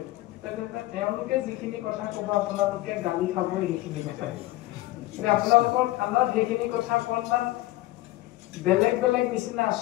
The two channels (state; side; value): quieter; right; 17.6 dB